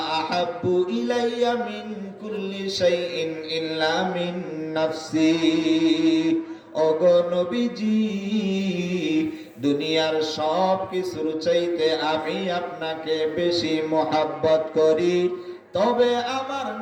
আহাব্বু ইলাইয়া মিন কুল্লি শাইইন ইল্লা মিন নাফসি। ওগো নবীজি দুনিয়ার সব কিছুর চাইতে আমি আপনাকে বেশি মহব্বত করি, তবে আমার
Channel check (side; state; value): both; identical; correlation 1.00